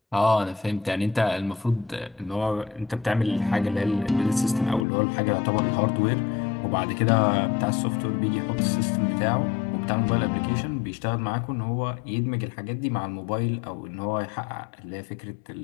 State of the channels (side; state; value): right; drops out; at 4.9 s